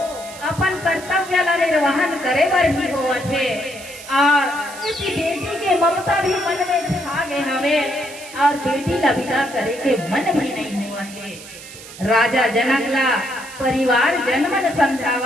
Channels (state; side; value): noise; right; hiss, 15 dB below the sound